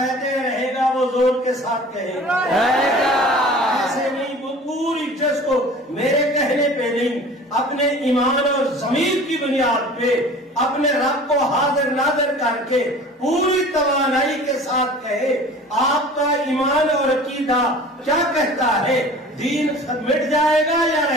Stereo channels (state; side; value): normal; both; correlation 0.43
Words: ہیں رہے گا، وہ زور کے ساتھ کہے گا رہے گا۔ ایسے نہیں، وہ پوری جس کو میرے کہنے پہ نہیں، اپنے ایمان اور ضمیر کی بنیاد پہ اپنے رب کو حاضر ناظر کر کے پوری توانائی کے ساتھ کہے، آپ کا ایمان اور عقیدہ کیا کہتا ہے؟ دین مٹ جائے گا یا